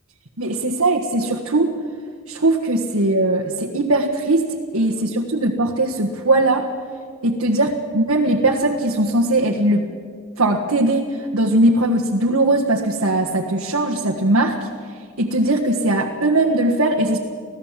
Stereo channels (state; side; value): normal; both; correlation 0.12